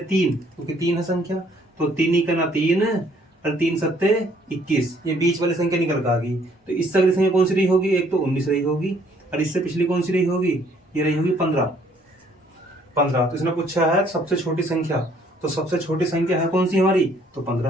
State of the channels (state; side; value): normal; both; correlation 0.63